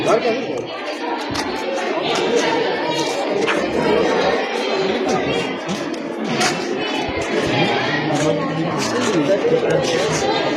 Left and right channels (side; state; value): both; identical; correlation 1.00